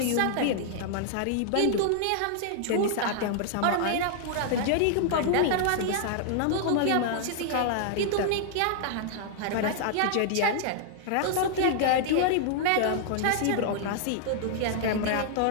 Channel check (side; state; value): both; different; correlation -0.01